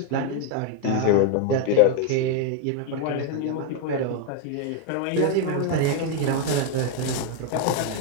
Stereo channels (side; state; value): both; different; correlation 0.01